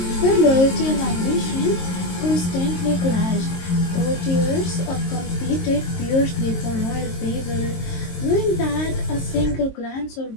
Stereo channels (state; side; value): late; right; 22 ms